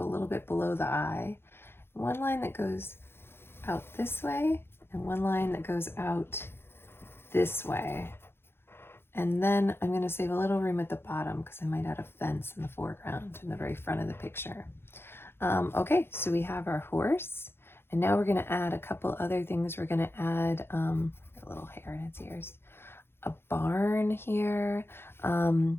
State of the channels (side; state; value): right; late; 0.11 ms